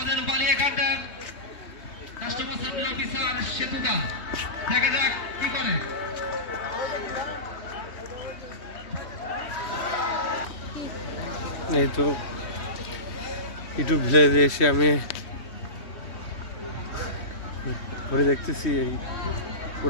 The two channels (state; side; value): late; right; 3.2 ms